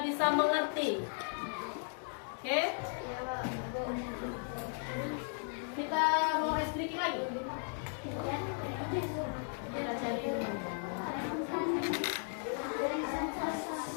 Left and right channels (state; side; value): silent; right; 54 dB below the other